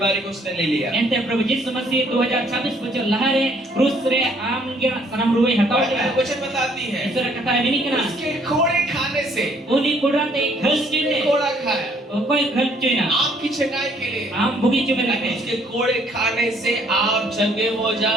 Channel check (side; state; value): both; normal; correlation 0.64